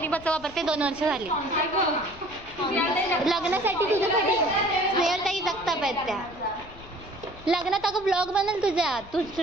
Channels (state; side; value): noise; left; rumble, 19 dB below the sound